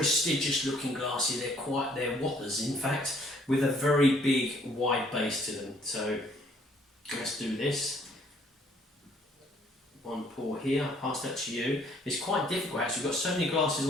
looking glasses. They're whoppers in fact, with a very big wide base to them. So let's do this. One pour here, I'll pass that to you. It's quite difficult actually, we've got so many glasses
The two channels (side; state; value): both; normal; correlation 0.62